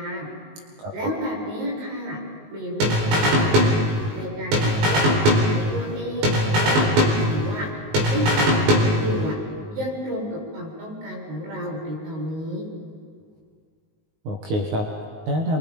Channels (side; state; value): left; late; 19 ms